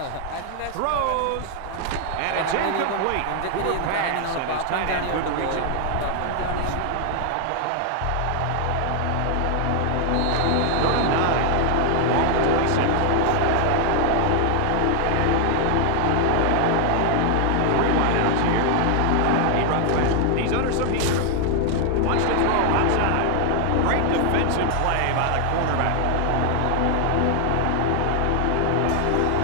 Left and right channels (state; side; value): different; both; correlation 0.00